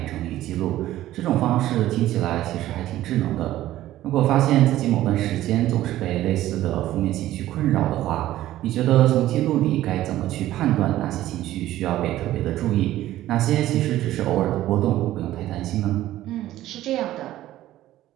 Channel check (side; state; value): left; quieter; 14.3 dB